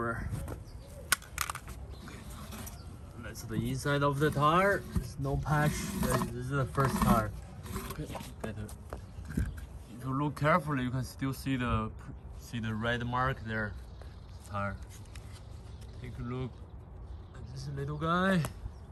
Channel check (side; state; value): both; identical; correlation 1.00